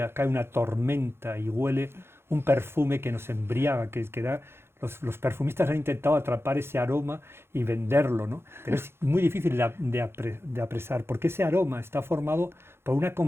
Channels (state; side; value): late; left; 0.12 ms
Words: cae una tormenta y huele un perfume que nos embriaga, que da... Los perfumistas han intentado atrapar ese aroma y venderlo, ¿no? Pero es muy difícil de apresar, porque ese aroma está formado por una